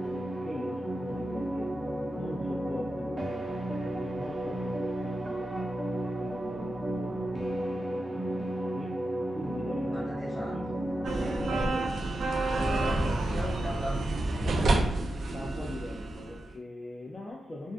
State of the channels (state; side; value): normal; both; correlation 0.90